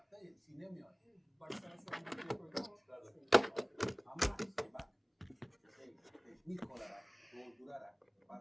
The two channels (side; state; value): both; identical; correlation 1.00